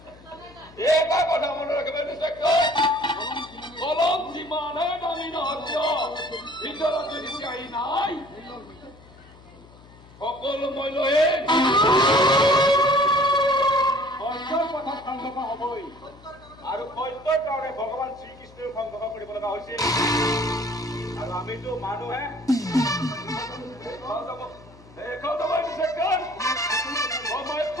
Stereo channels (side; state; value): left; noise; hum, 23 dB below the sound